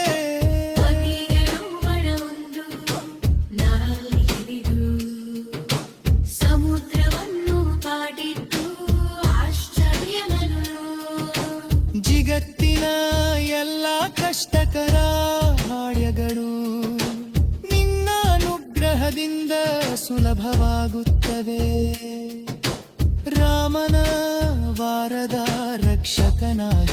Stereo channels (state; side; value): identical; both; correlation 1.00